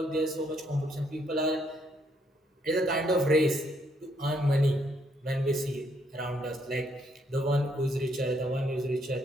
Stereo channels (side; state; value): both; normal; correlation 0.72